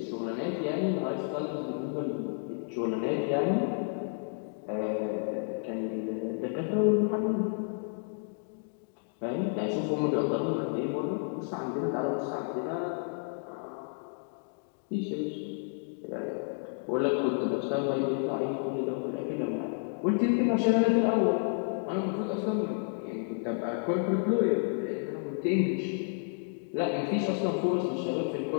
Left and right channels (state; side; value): silent; right; 57 dB below the other